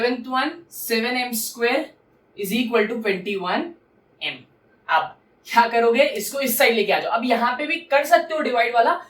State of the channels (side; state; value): both; identical; correlation 1.00